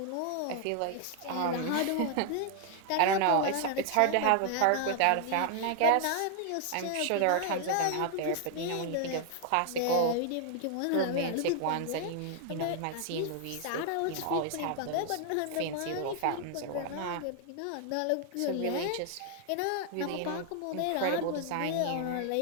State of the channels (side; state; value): both; different; correlation 0.00